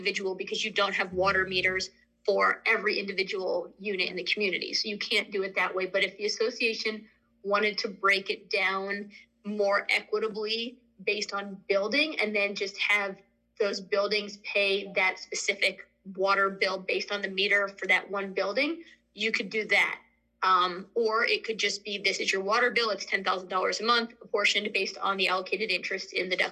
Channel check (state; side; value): identical; both; correlation 1.00